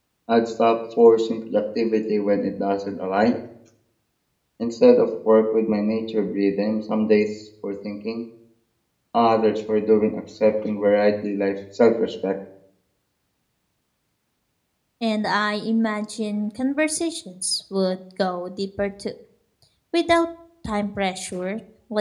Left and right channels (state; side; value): identical; both; correlation 1.00